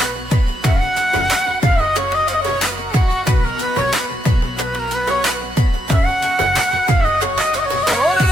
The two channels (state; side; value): normal; both; correlation 0.80